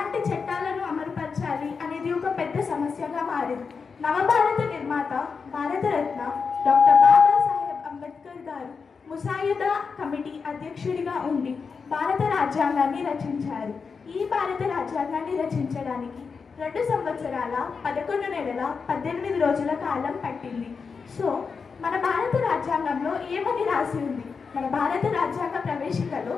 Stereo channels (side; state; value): right; quieter; 5.3 dB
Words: చట్టాలను అమలుపరచాలి అనేది ఒక పెద్ద సమస్యగా మారింది. నవభారత నిర్మాత భారతరత్న డాక్టర్ బాబాసాహెబ్ అంబేద్కర్ గారు ముసాయిదా కమిటీ అధ్యక్షుడిగా ఉండి భారత రాజ్యాంగాన్ని రచించారు. ఈ భారత రాజ్యాంగాన్ని రచించడానికి 2 సంవత్సరాల 11 నెలల 18 రోజుల కాలం పట్టింది. సో మన భారత రాజ్యాంగంలో ఏమని రాసి ఉంది? మన భారత రాజ్యాంగ ప్రవేశికలో